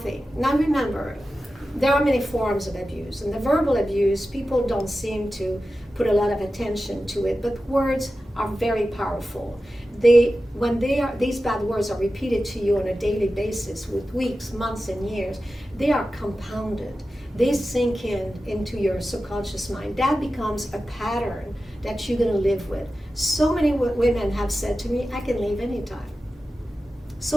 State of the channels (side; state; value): both; normal; correlation 0.93